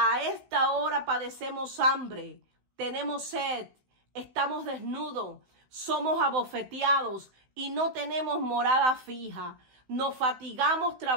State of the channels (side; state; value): left; late; 16 ms